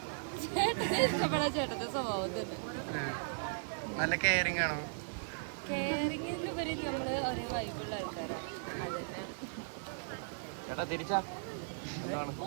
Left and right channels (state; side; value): silent; left; digital silence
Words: ഇഷ്ടപ്പെടാൻ ചേട്ടന്റെ സ്വഭാവം തന്നെ. നല്ല കെയറിംഗ് ആണോ? കെയറിംഗിലുപരി നമ്മള് ഒരേ വൈബുള്ള ആൾക്കാരാണ്, അത് തന്നെയാണ്. ഓ